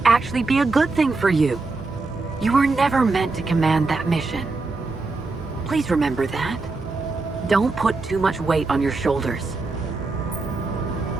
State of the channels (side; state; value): left; quieter; 3.6 dB